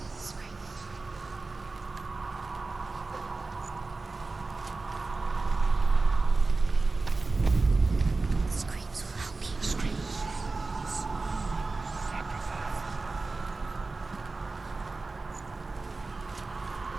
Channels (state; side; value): quieter; left; 3.6 dB